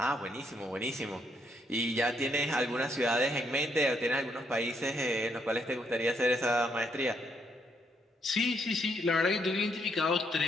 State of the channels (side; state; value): both; normal; correlation 0.74